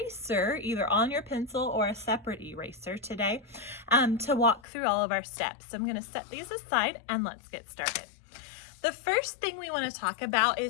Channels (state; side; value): drops out; right; at 4.6 s